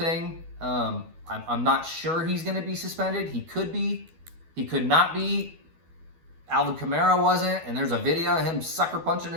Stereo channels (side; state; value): left; late; 12 ms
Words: I'm not sure he's going to be suspended. He could be. He could not be. Alvin Kamara wasn't. And there's a video of him sucker punching